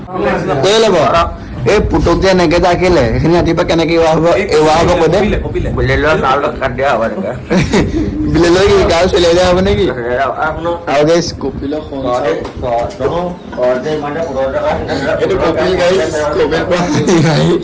কৈ ল'ব এই পুতুক যে এনেকে যে আঁকিলে সেইখিনি ৰাতিপুৱা কেনেকে এৱা হ'ব কৈ দে বিলেলৈ কি গাও চলিয়াই দিয়া হ'ব নেকি আৰু গাইছ কপিল এইটো কপিল গাইছ কপিল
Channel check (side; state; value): both; identical; correlation 1.00